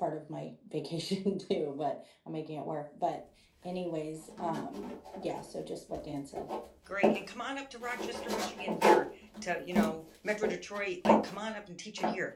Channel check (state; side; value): identical; both; correlation 1.00